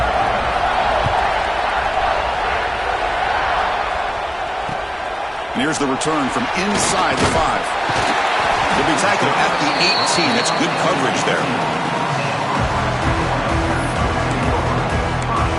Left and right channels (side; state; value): both; identical; correlation 1.00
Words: And here's the return from inside the 5. He'll be tackled at the 18. That's good coverage there.